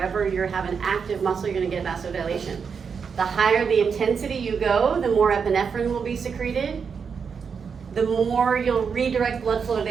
you have an active muscle, you're gonna get vasodilation. The higher the intensity you go, the more epinephrine will be secreted. The more you'll redirect blood flow to the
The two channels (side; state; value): left; quieter; 6.1 dB